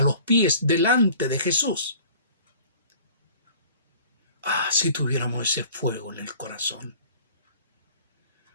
los pies delante de Jesús. Ah, si tuviéramos ese fuego en el corazón.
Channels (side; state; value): both; inverted; correlation -0.47